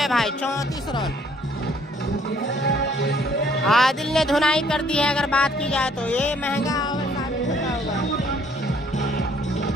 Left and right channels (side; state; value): both; normal; correlation 0.63